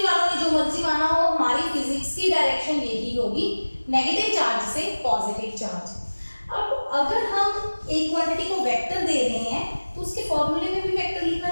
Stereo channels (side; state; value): both; inverted; correlation -1.00